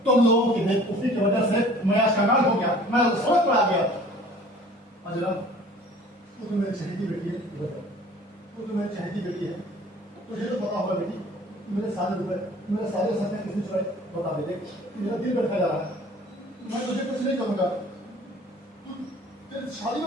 तुम लोगों की बेवकूफी की वजह से मैं आज कंगाल हो गया, मैं सड़क पर आ गया। अजला, तू तो मेरी चहेती बेटी है, तू तो मेरी चहेती बेटी है, तुझे तो पता होगा बेटी, मेरे सारे रुपए, मेरे सारे सपने किसने चुराए? बता दे, देख मेरा दिल बैठा जा रहा है। मैं तुझे कुछ नहीं करूंगा, तेरी शादी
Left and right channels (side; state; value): both; normal; correlation 0.49